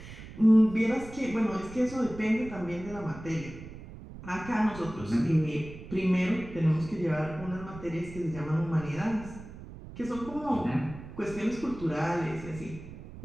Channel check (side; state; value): right; noise; rumble, 14 dB below the sound